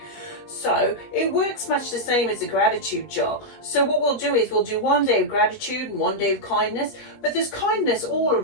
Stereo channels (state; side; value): late; right; 20 ms